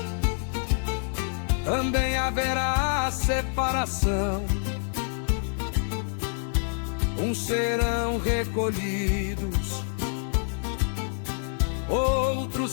também haverá separação. Uns serão recolhidos,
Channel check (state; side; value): silent; right; digital silence